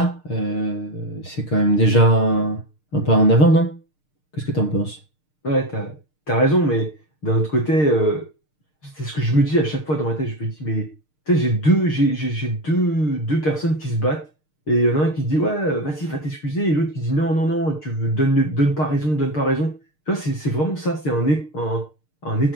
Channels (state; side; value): late; right; 6.6 ms